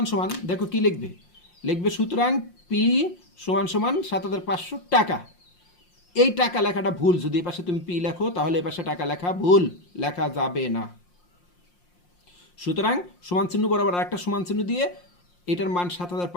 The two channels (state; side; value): late; right; 5.7 ms